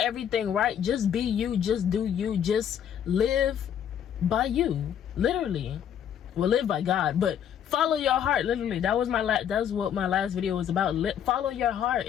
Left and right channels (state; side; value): quieter; right; 9.2 dB